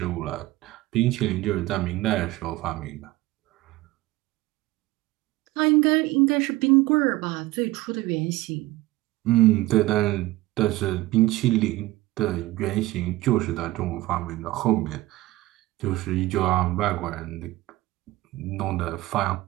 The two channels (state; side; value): quieter; left; 18.2 dB